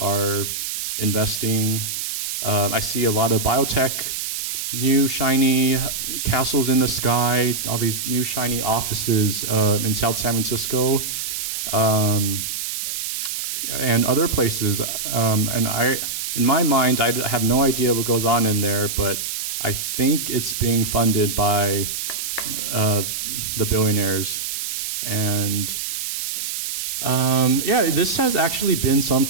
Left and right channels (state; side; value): noise; right; hiss, 3 dB below the sound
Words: investing. I see a lot of biotech, new shiny castles in the sky, all these new shiny offices in South San Francisco, and other places. And in my mind, I have no idea what goes on in there, but I think it's being funded by the billionaires. And yeah, this has actually been